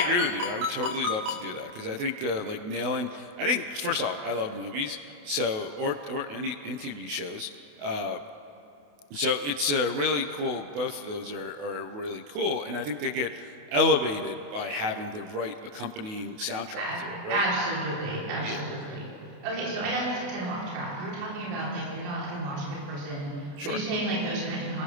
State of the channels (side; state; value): left; late; 28 ms